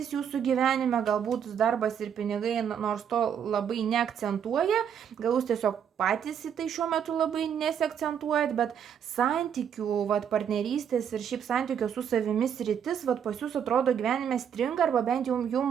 jūsų gyvenime, galbūt darbas ir pinigai, nors to labai neakcentuoja, gal jūs tiesiog patys į tai šiuo metu labai nesiakcentuojat, bet santykių, partnerystės ir šiaip santykio su savimi sritis, pas jūs atrodo gyvenime stringa, arba bent jau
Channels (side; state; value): left; quieter; 8.3 dB